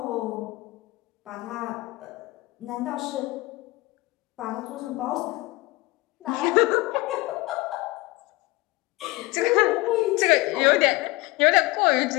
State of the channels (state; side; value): quieter; right; 21.6 dB